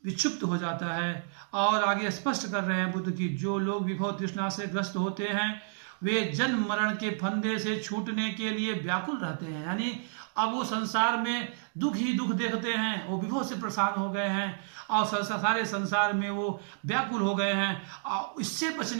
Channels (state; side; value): silent; left; digital silence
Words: विक्षुब्ध हो जाता है। और आगे स्पष्ट कर रहे हैं बुद्ध की जो लोग विभव तृष्णा से ग्रस्त होते हैं वे जन्म मरण के फंदे से छूटने के लिए व्याकुल रहते हैं। यानी अब वो संसार में दुख ही दुख देखते हैं, वो विभव से परेशान हो गए हैं और सारे संसार में वो व्याकुल हो गए हैं और इससे